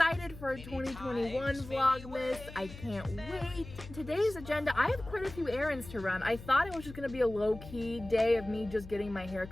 for 2021 Vlogmas. I can't wait. Today's agenda, I have quite a few errands to run. I thought it was just gonna be a low-key day of me just getting my hair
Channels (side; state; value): left; noise; hum, 14 dB below the sound